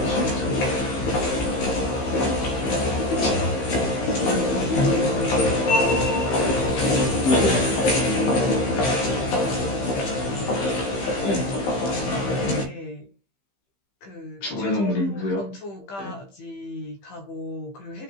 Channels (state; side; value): late; right; 15 ms